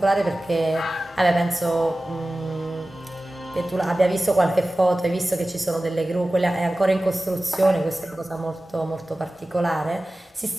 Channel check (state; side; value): normal; both; correlation 0.96